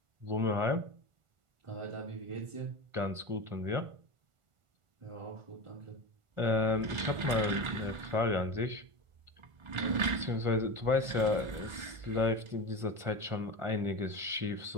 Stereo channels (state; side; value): late; left; 1.4 ms